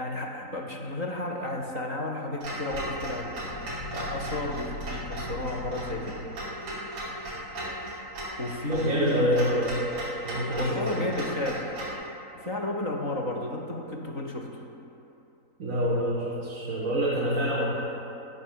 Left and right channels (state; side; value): late; left; 3.9 ms